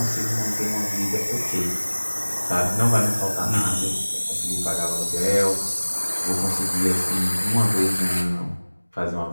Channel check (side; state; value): both; inverted; correlation -1.00